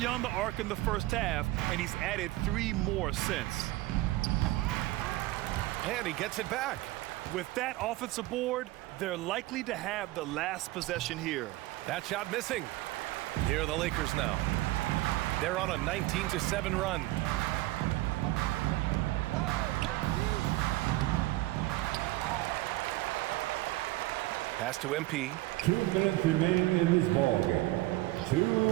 the arc in the first half, and he's added 3 more since. And he gets it back. With that offensive board, they're likely to have the last possession here. That shot missing. Here are the Lakers now. They're on a 19-7 run. Pass to MP. 2 minutes remain in this ballgame. 2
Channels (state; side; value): quieter; left; 18.5 dB